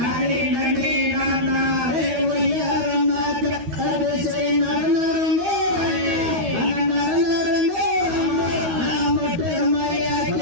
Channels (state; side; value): late; left; 13 ms